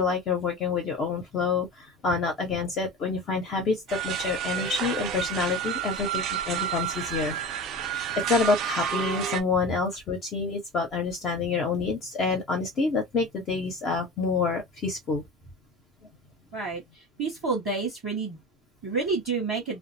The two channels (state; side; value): normal; both; correlation 0.31